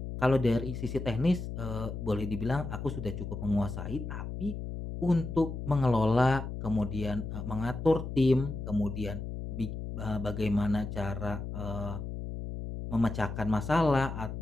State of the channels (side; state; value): left; noise; hum, 6 dB below the sound